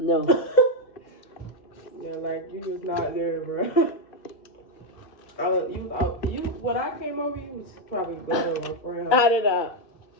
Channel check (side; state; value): right; late; 2.7 ms